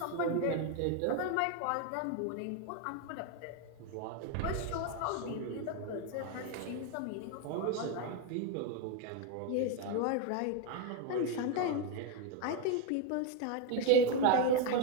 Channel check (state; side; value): different; both; correlation 0.01